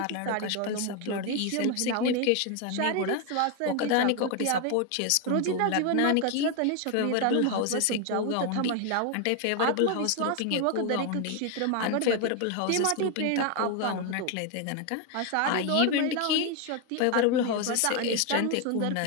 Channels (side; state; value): both; different; correlation 0.01